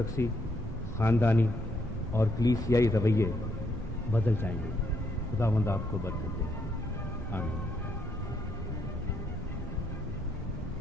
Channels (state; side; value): normal; both; correlation 0.75